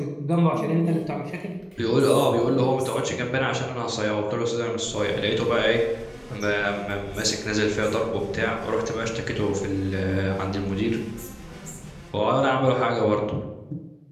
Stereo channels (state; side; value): identical; both; correlation 1.00